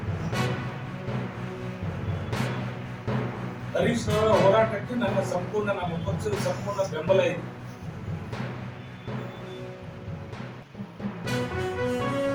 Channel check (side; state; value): both; identical; correlation 1.00